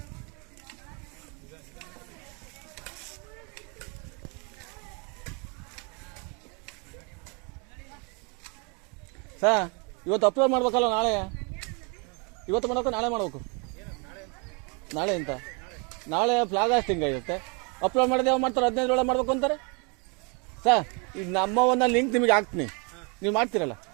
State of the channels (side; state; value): left; quieter; 33.6 dB